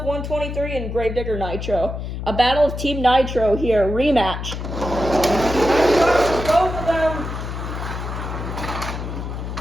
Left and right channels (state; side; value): noise; left; hum, 6 dB below the sound